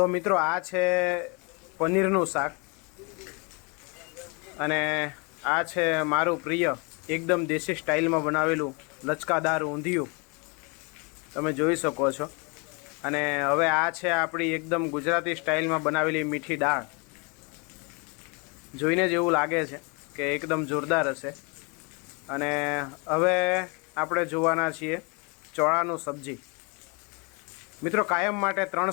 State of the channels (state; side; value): quieter; right; 31.6 dB